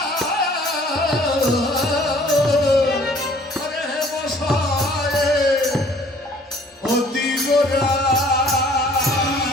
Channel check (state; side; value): normal; both; correlation 0.55